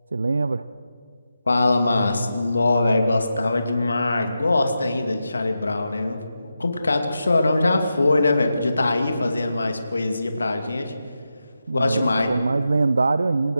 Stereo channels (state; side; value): inverted; both; correlation -0.89